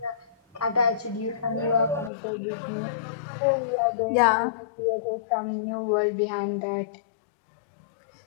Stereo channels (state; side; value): drops out; right; at 2.1 s